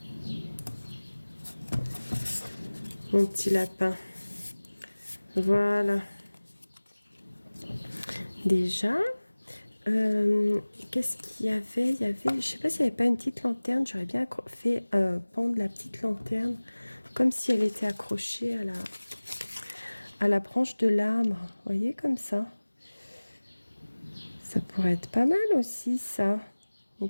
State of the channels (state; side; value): inverted; both; correlation -1.00